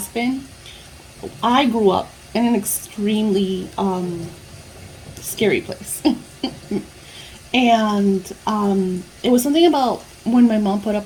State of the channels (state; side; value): identical; both; correlation 1.00